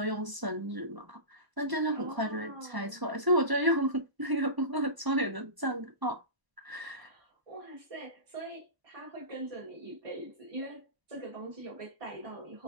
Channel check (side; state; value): left; late; 1.0 ms